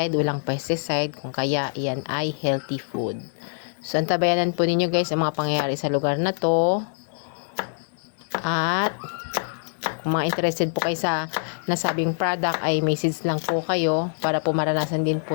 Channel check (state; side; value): silent; right; digital silence